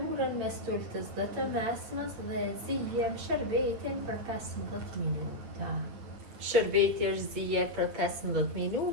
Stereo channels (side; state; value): left; late; 8.7 ms